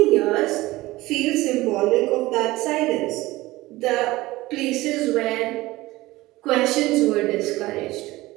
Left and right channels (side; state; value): left; quieter; 18.8 dB